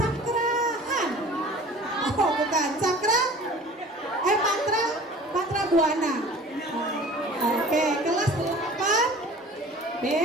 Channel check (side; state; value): both; normal; correlation 0.44